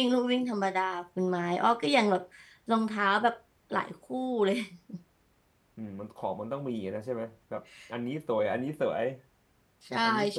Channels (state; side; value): identical; both; correlation 1.00